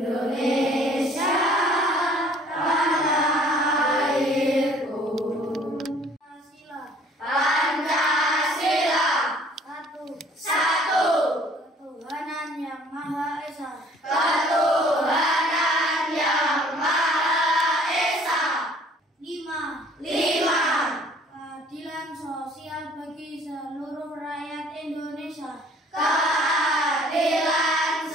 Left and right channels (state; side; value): normal; both; correlation 0.55